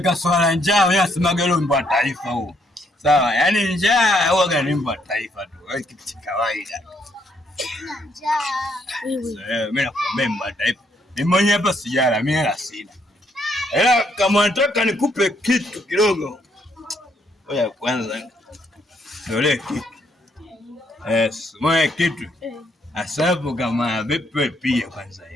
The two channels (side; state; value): both; normal; correlation 0.72